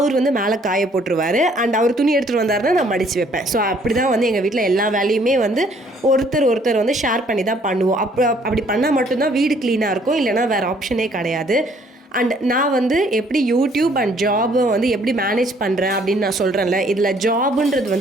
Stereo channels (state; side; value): normal; both; correlation 0.62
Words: மேலே காய போட்டுருவார். அண்ட் அவர் துணி எடுத்துகிட்டு வந்தாருன்னா நான் மடித்து வைப்பேன். ஸோ அப்படி தான் எங்கள் வீட்டில் எல்லா வேலையுமே ஒருத்தர் ஷேர் பண்ணி தான் பண்ணுவோம். அப்படி பண்ணால் மட்டும்தான் வீடு க்ளீனாக இருக்கும், இல்லைனா வேறு ஆப்ஷனே கிடையாது. அண்ட் நான் எப்படி யூடியூப் அண்ட் ஜாபை எப்படி மேனேஜ் பண்ணுறேன் அப்படின்னு நான் சொல்கிறேன்ல, இதில்